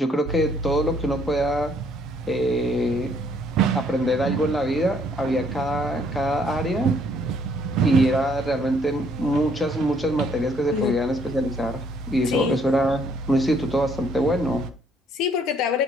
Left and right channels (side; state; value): both; normal; correlation 0.65